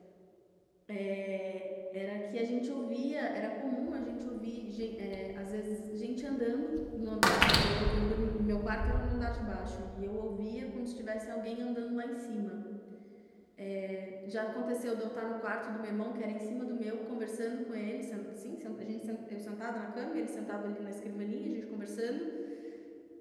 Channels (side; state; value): both; identical; correlation 1.00